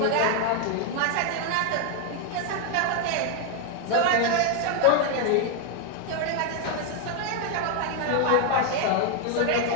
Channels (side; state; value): both; different; correlation 0.00